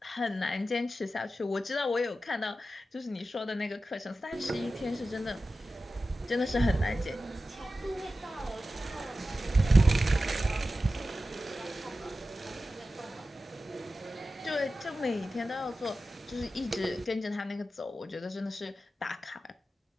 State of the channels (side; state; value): both; normal; correlation 0.93